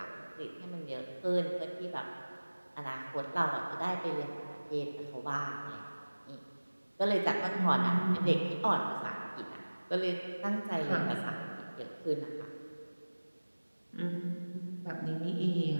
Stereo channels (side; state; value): both; inverted; correlation -1.00